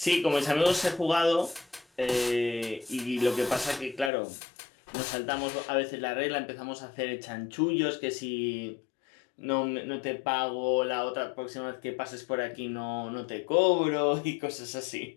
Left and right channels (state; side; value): drops out; right; at 4.1 s